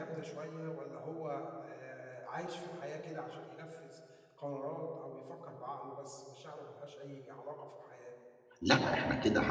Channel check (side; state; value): both; identical; correlation 1.00